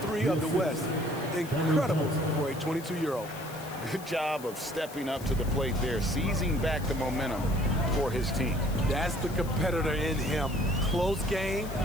3 of the West. Incredible for a 22-year-old. Good job of stepping up to the plate there, seizing back the momentum for his team. That's the competitor in him. Close game.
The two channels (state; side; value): noise; left; hiss, 17 dB below the sound